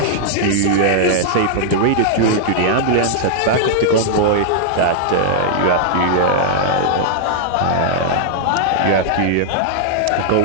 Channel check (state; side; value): different; both; correlation -0.01